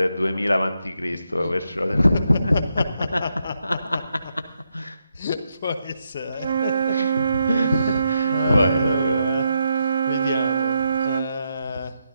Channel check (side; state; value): both; inverted; correlation -0.81